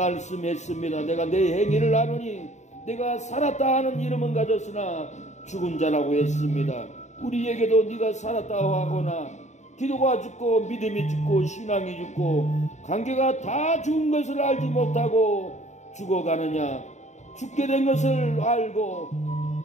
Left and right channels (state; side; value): late; right; 0.34 ms